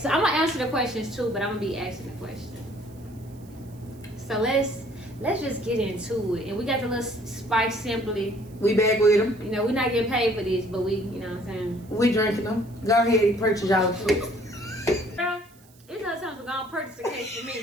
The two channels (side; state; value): right; noise; hiss, 28 dB below the sound